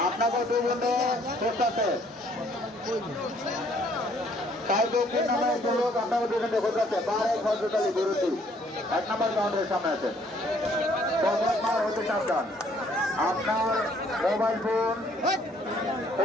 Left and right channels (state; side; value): normal; both; correlation 0.63